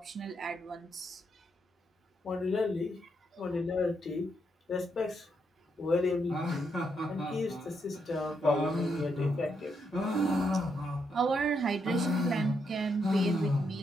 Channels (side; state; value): both; normal; correlation 0.79